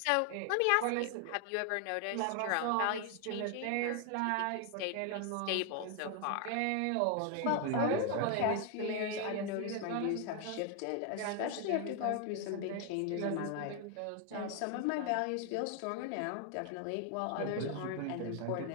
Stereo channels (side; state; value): both; different; correlation 0.00